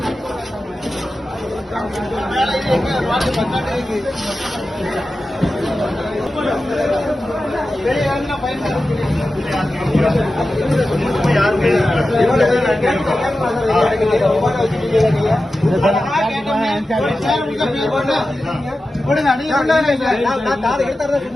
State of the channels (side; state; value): both; normal; correlation 0.93